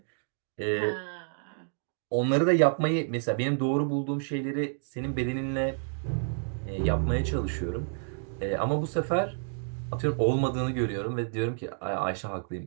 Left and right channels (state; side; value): silent; left; digital silence